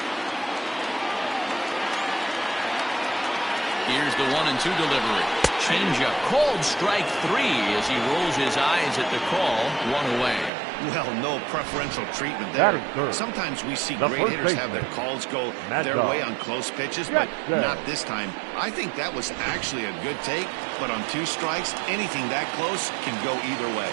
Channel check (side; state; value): left; drops out; at 10.5 s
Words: Here's the 1-2 delivery. Changeup, called strike 3 as he rolls his eyes at the call. 1 away. Well, no preferential treatment there. Sometimes we see great hitters have their calls go their way on close pitches, but not this time. I think that was actually a good take, but on 2 strikes, anything that close can go either way.